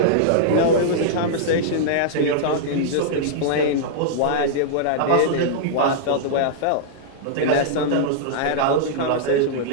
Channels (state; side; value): different; both; correlation -0.02